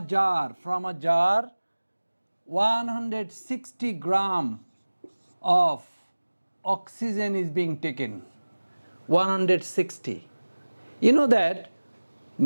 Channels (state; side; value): inverted; both; correlation -1.00